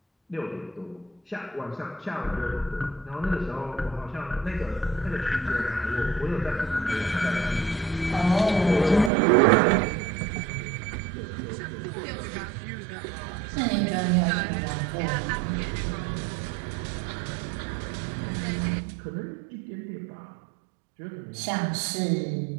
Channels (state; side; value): drops out; left; at 9.1 s